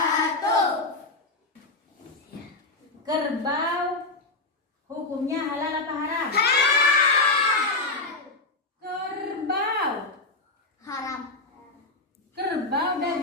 Kerbau hukumnya halal apa haram? Kerbau. Haram. Kerbau,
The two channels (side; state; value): right; quieter; 3.2 dB